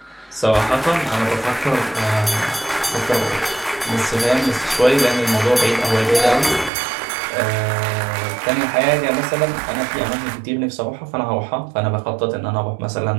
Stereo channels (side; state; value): left; drops out; at 6.7 s